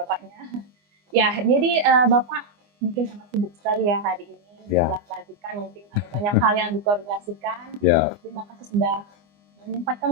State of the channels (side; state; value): left; late; 24 ms